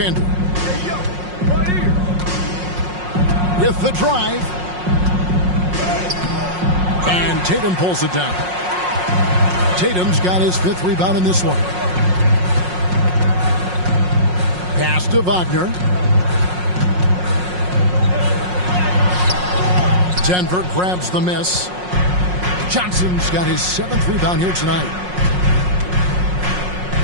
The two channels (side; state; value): left; late; 5.5 ms